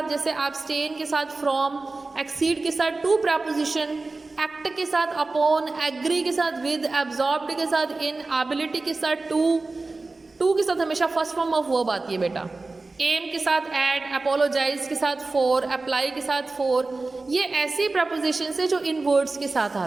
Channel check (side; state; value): left; quieter; 3.5 dB